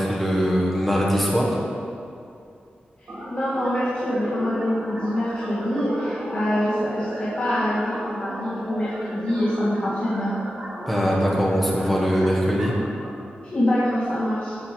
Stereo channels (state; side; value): normal; both; correlation 0.91